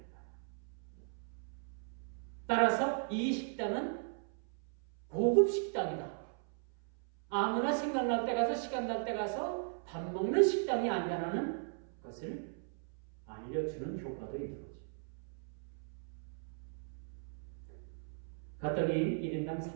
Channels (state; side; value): silent; left; 53 dB below the other